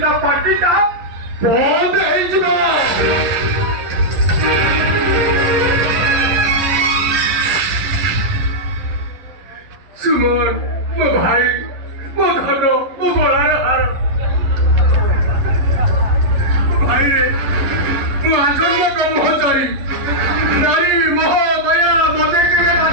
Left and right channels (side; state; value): left; late; 11 ms